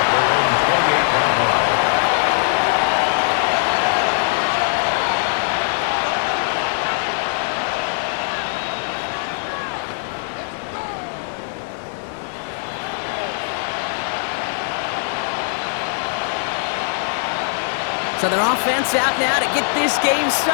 So their offense out now to get this game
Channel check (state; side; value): silent; right; digital silence